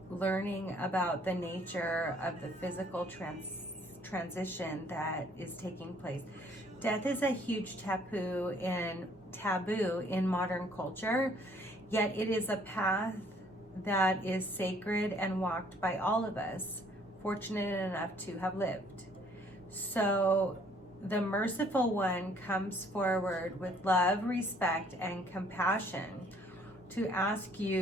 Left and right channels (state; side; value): normal; both; correlation 0.61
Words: learning about the nature of the physical transition that is taking place. Death is a huge taboo in modern culture, yet it is a path that is sacred and walked by all of us, fortunate enough to have lived. So the merciful one comes forward with love, respect, and compassion to ask